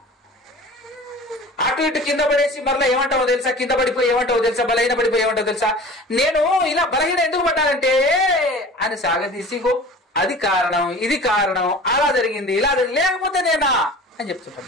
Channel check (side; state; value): both; normal; correlation 0.41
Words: అటు ఇటు కింద పడేసి మరలా ఏమంటావో తెలుసా, కింద పడిపోయి ఏమంటావో తెలుసా, బలహీన పడిపోయి ఏమంటావో తెలుసా, నేను ఇలా బలహీన ఎందుకు పడ్డానంటే అని సాగదీసిగో అది కారణం, ఇది కారణం, అలా జరిగింది, ఇలా జరిగింది, లేకపోతే నేనా అని